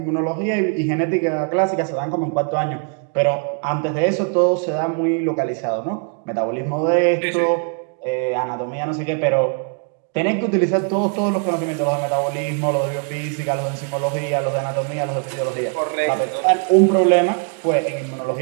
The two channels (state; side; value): quieter; left; 39.3 dB